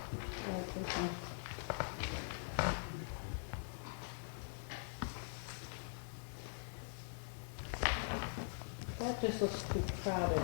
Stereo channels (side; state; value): right; silent; digital silence